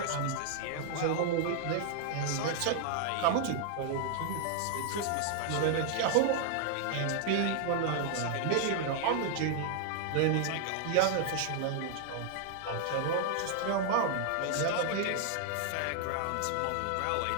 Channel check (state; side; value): different; both; correlation 0.00